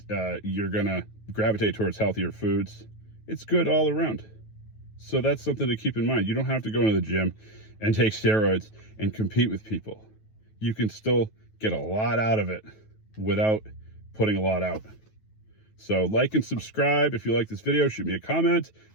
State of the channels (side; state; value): right; late; 9.3 ms